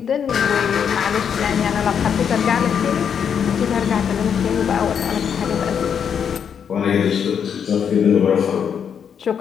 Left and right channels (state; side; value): quieter; right; 7.6 dB